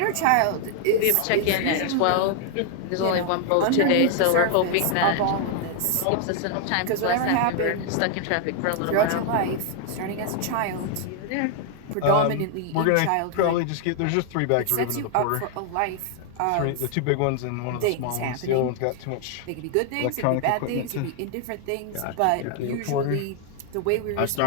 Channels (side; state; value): both; different; correlation 0.00